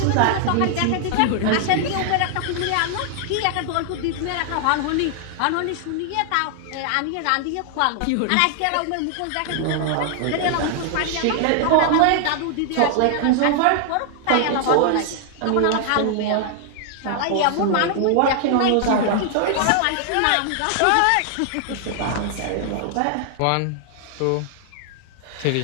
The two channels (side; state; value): both; different; correlation 0.00